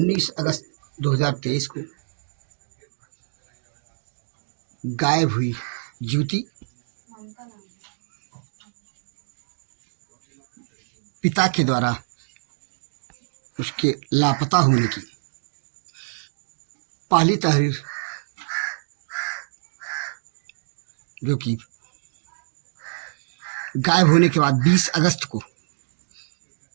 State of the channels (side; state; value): left; silent; digital silence